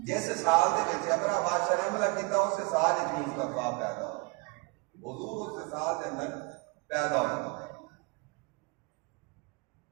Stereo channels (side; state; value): left; quieter; 27.6 dB